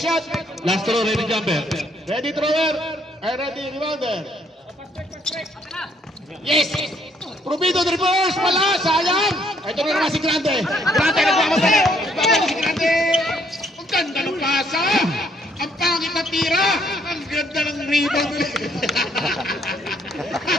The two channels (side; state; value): both; normal; correlation 0.68